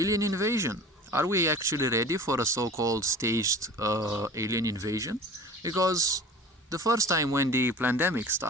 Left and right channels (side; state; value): both; normal; correlation 0.40